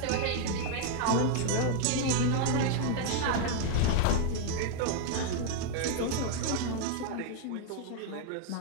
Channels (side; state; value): both; different; correlation 0.00